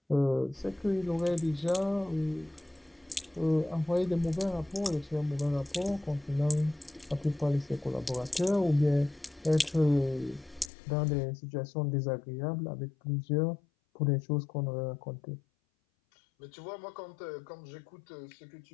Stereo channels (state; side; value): drops out; right; at 10.7 s